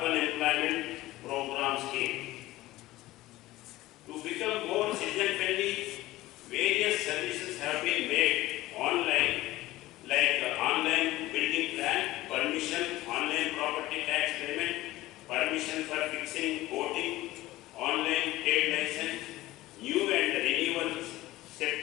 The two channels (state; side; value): quieter; right; 17.3 dB